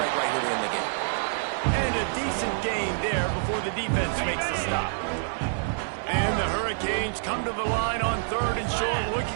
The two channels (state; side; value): silent; left; digital silence